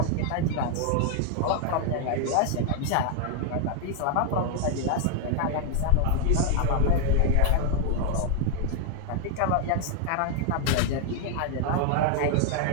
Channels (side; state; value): both; different; correlation 0.00